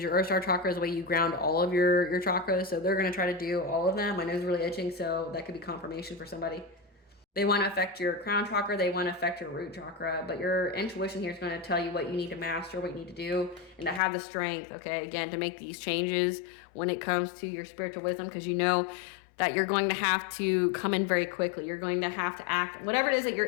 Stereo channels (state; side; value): drops out; right; at 14.0 s